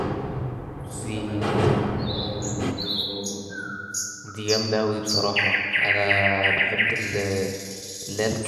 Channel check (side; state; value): both; identical; correlation 1.00